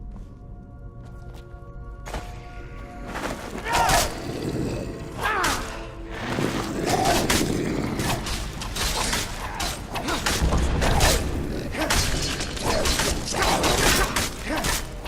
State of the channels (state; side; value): identical; both; correlation 1.00